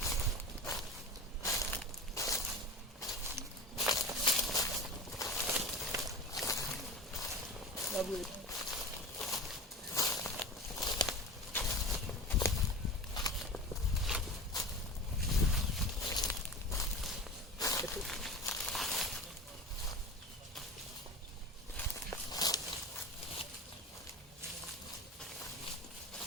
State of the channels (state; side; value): normal; both; correlation 0.31